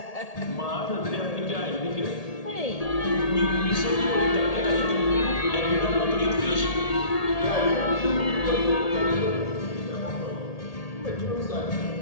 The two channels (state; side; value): late; right; 1.8 ms